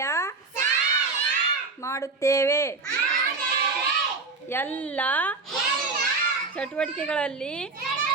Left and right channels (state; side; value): quieter; left; 4.0 dB